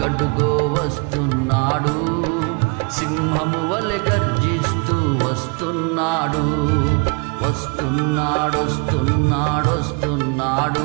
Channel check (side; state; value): left; quieter; 33.0 dB